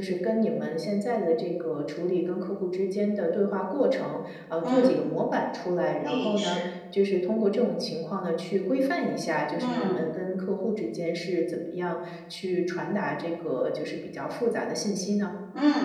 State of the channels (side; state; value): both; identical; correlation 1.00